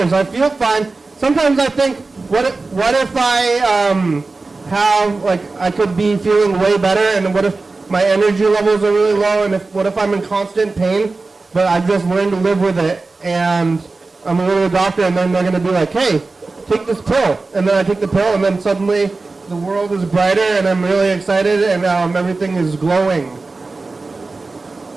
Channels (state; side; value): quieter; left; 3.7 dB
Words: I feel fine. Sometimes I think, what if I have, like, I could be feeling way better, and what if my energy levels are really low, and what if I'm in constant pain, but I've just learned to live with it, and I'm going to go to the doctor, and then they're going to be like, hey, take this pill. And then I take the pill, and then suddenly the world is brighter, and I'm really excited, and everything is glowing.